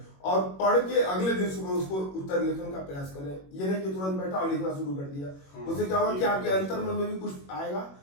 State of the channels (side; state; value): right; late; 21 ms